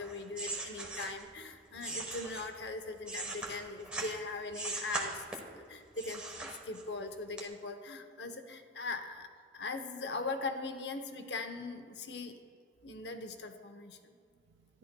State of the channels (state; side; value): normal; both; correlation 0.10